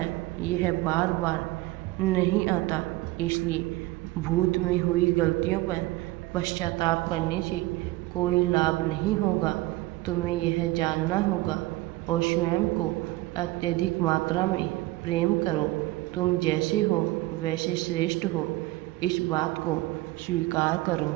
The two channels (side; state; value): left; quieter; 19.3 dB